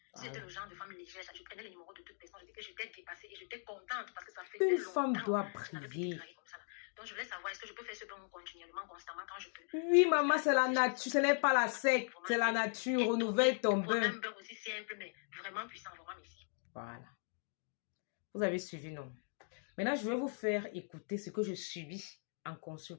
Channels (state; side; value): silent; right; 52 dB below the other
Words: C'était le genre de femme légère. Je prenais les numéros de toute personne. Je disais que j'étais dépassée et j'étais contente parce que ça faisait Une longtemps. femme doit Je n'avais plus été briller. draguée comme ça. Donc, je voulais savoir, est-ce que je peux faire ce bain continuellement, constamment, quand je peux? Oui, maman, c'est la nature. Ce n'est pas la secte. C'est la nature. Renouvelle ton bain. Un bain aussi simple, mais vraiment puissant. Vraiment, merci. Voilà. Vous avez suivi, non? Maintenant, je vais vous faire écouter ce que je subis en